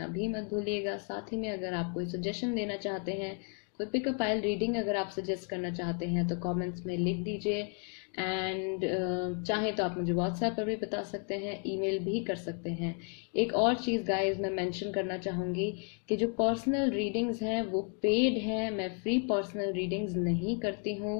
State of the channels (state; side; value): quieter; right; 39.4 dB